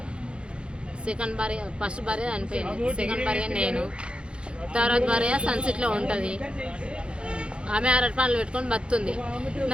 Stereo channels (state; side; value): late; left; 0.056 ms